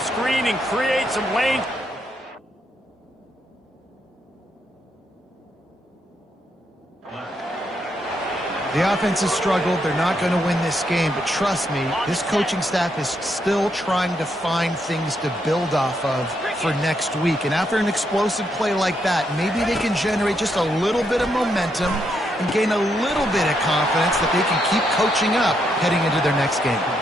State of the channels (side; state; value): both; normal; correlation 0.78